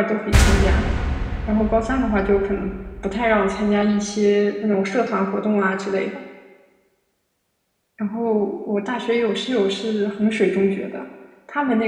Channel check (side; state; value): both; identical; correlation 1.00